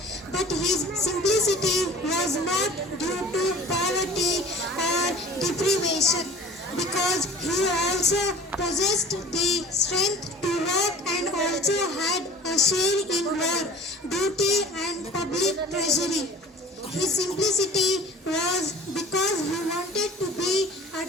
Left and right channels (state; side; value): normal; both; correlation 0.44